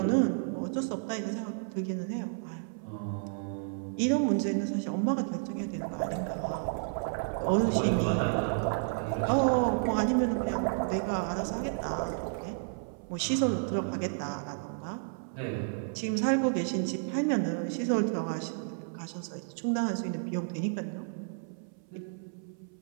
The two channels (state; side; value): silent; left; 57 dB below the other